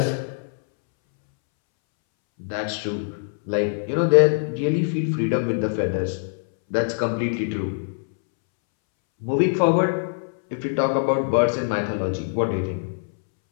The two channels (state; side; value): silent; right; 63 dB below the other